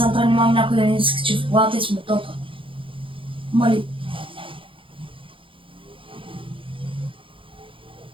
трябва нямам някой да ни скачи в колата и сме топа. Мали.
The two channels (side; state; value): left; late; 0.25 ms